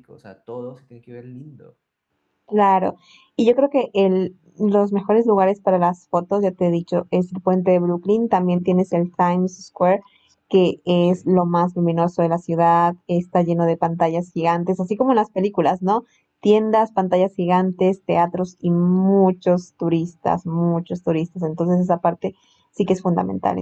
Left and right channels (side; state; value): both; identical; correlation 1.00